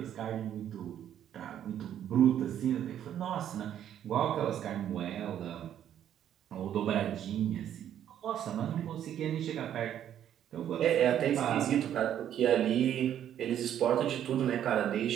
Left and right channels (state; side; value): quieter; left; 10.4 dB